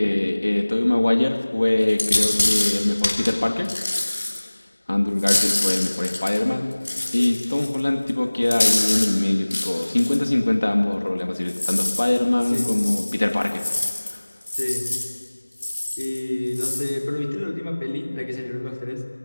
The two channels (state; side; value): inverted; both; correlation -1.00